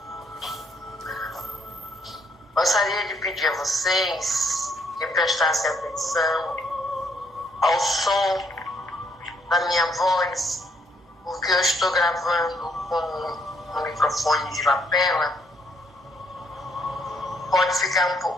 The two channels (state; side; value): normal; both; correlation 0.70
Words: Gostaria de pedir a vocês que prestassem atenção ao som da minha voz, porque eu estou gravando com um microfone de lapela. Pode ficar um